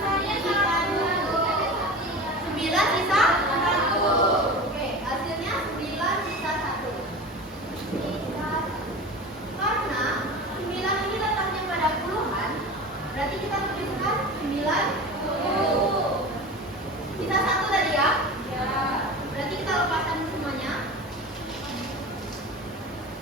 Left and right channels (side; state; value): both; normal; correlation 0.32